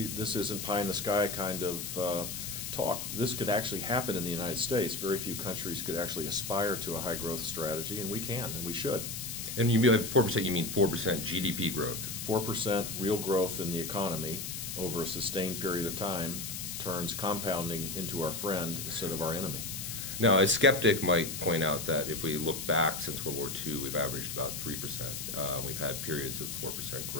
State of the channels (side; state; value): left; noise; hiss, 6 dB below the sound